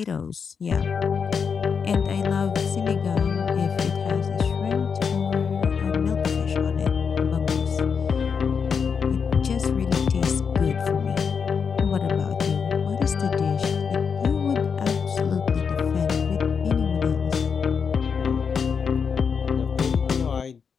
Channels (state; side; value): quieter; right; 6.2 dB